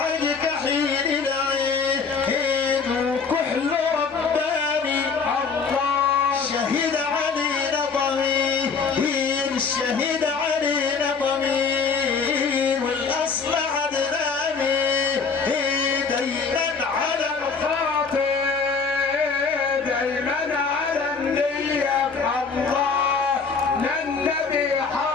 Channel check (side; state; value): right; quieter; 5.3 dB